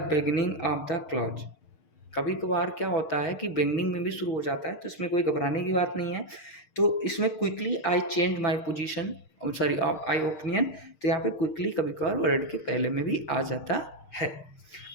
beginning of the clause. कभी कभार क्या होता है कि बिगनिंग में भी शुरू हो जाता है, तो इसमें कोई घबराने की बात नहीं है। तो इसमें quickly I change my position, sorry I opinion, तो यहाँ पे क्विकली कभी कभार वर्ड के पहले में भी आ जाता है।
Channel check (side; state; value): right; late; 6.4 ms